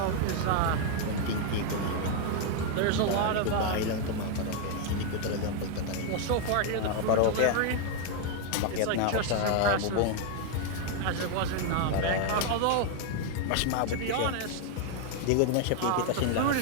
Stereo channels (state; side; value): different; both; correlation 0.00